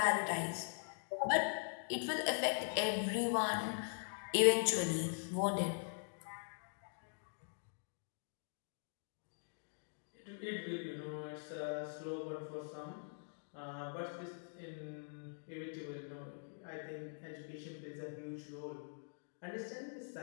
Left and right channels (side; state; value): right; silent; digital silence